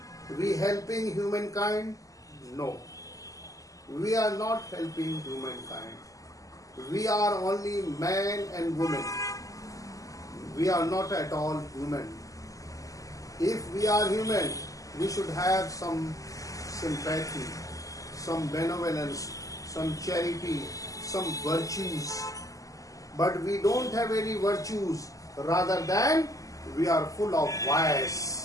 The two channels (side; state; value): right; late; 0.16 ms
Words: we helping humankind? No. We are not helping humankind. We are only man and woman. We are not at all human. If we are human, we should have some sympathy, some benevolence, some charity, some virtues. But we don't have any virtues. Rather than we are full of